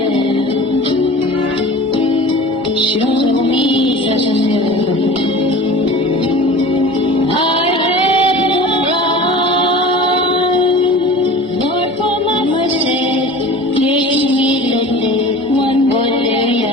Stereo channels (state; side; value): normal; both; correlation 0.39